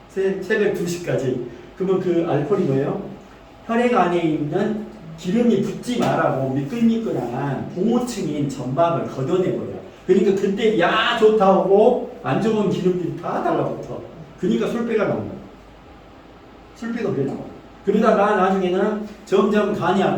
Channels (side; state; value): both; identical; correlation 1.00